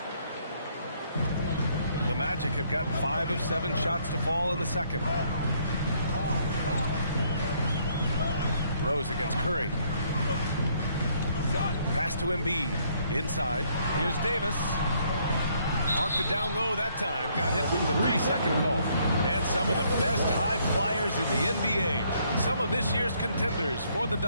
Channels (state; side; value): inverted; both; correlation -0.67